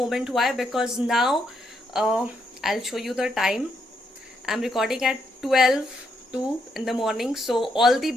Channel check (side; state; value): both; normal; correlation 0.77